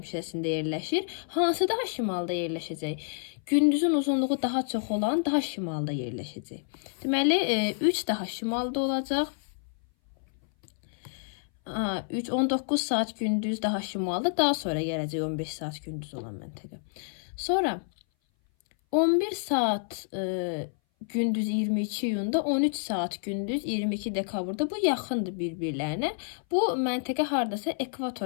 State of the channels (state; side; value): silent; right; 58 dB below the other